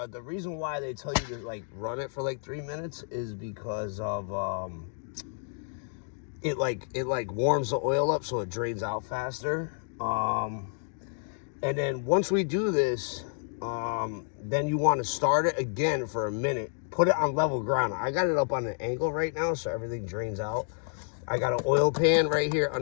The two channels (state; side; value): silent; right; 58 dB below the other